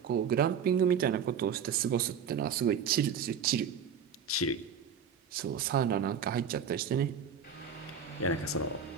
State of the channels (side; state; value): left; quieter; 7.0 dB